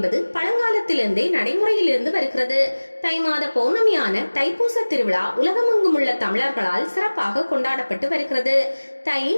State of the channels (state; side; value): inverted; both; correlation -1.00